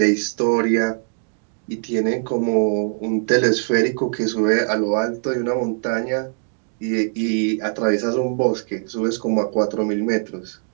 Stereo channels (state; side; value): silent; left; 65 dB below the other